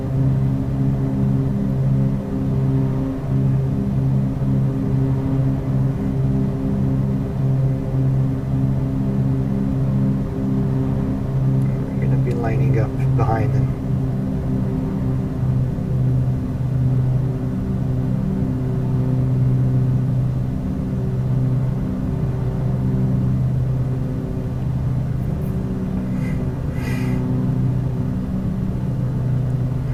Lining up behind him.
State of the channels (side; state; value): both; identical; correlation 1.00